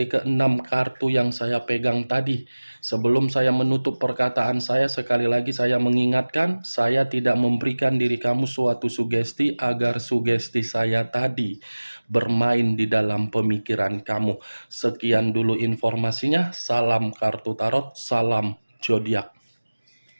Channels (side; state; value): both; inverted; correlation -1.00